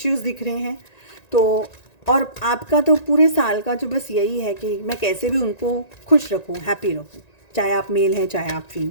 दिख रहे हैं। तो और आपका तो पूरे साल का जो बस यही है कि मैं कैसे भी उनको खुश रखूं, हैप्पी रखूं, चाहे आप मेल हैं चाहे आप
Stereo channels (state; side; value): late; right; 1.9 ms